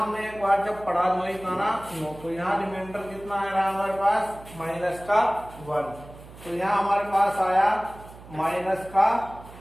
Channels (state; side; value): noise; right; hum, 18 dB below the sound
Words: हमने एक बार जब पढ़ा 9 तो यहाँ रिमाइंडर कितना आ रहा है हमारे पास, माइनस का 1। तो यहाँ हमारे पास आया माइनस का